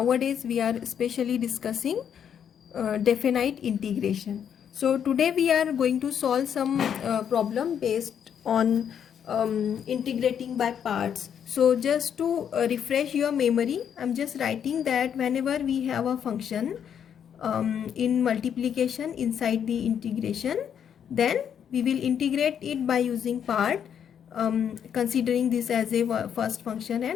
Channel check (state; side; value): quieter; right; 8.5 dB